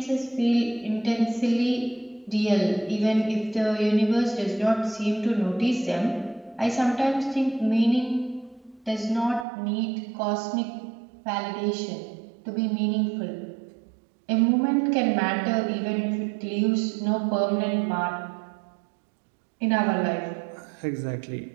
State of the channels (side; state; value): left; drops out; at 9.5 s